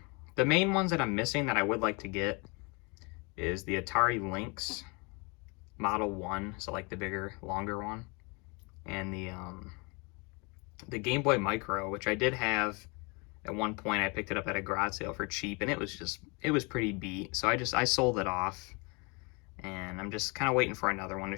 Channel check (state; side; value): quieter; right; 30.4 dB